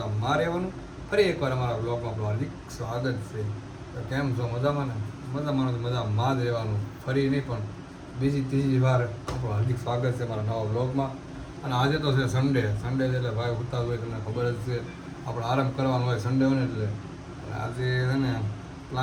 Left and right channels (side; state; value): both; identical; correlation 1.00